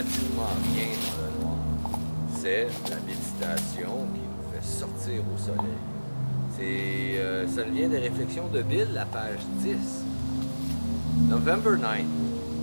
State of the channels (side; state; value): both; inverted; correlation -1.00